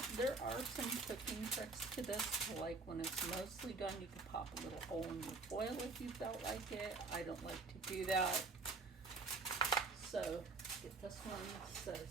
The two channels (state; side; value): quieter; left; 3.8 dB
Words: there are some cooking tricks to this, like when it's mostly done, you can pop a little hole in your foil if you felt like it. I don't like to do that. So, get this one set